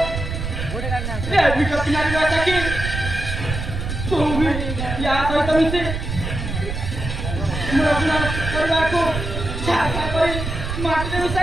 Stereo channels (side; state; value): right; noise; rumble, 5 dB below the sound